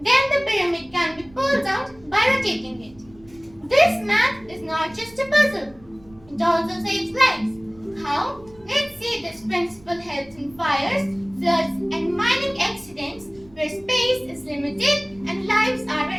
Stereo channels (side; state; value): right; noise; rumble, 25 dB below the sound